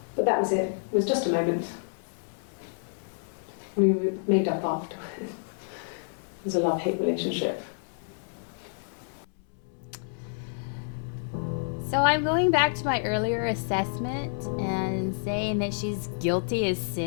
But that was it. It was just a moment. We were made up afterwards. It was a love-hate relationship. So I'm going back to my earlier assessment and saying that she's guilty as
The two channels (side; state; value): right; silent; 59 dB below the other